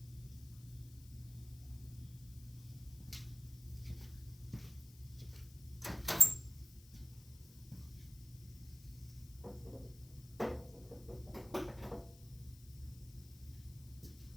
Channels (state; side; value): noise; left; hiss, 20 dB below the sound